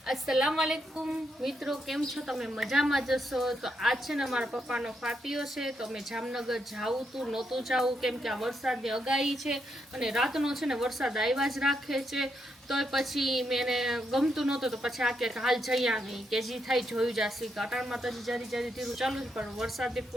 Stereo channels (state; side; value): normal; both; correlation 0.80